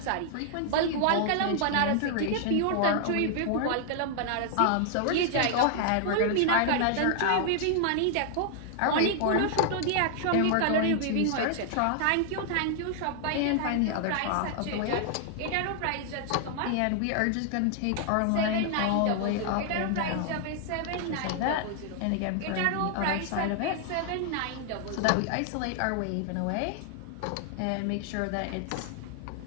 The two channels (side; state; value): both; different; correlation 0.00